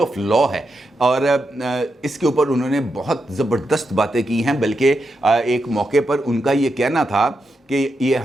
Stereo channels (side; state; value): both; normal; correlation 0.85